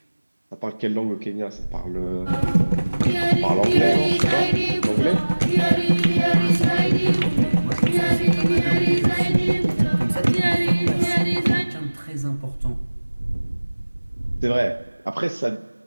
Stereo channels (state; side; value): inverted; both; correlation -1.00